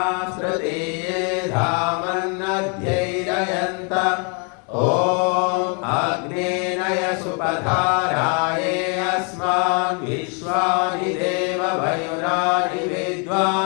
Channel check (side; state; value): right; quieter; 37.4 dB